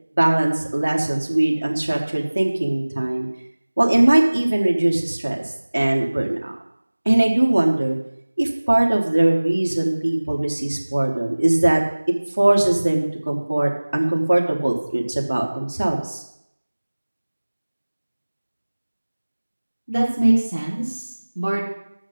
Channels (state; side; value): inverted; both; correlation -1.00